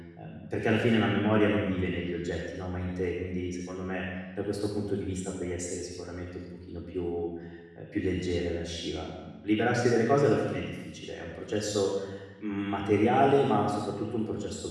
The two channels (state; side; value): identical; both; correlation 1.00